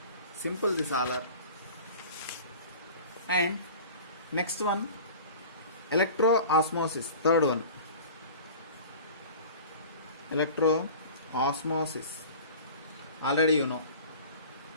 Simple this all are. And next one, electroosmosis, third one. Electroosmosis. Already you know.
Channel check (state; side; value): inverted; both; correlation -0.39